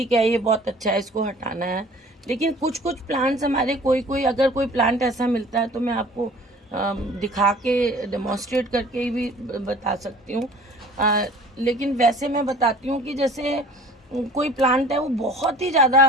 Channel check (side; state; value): both; normal; correlation 0.48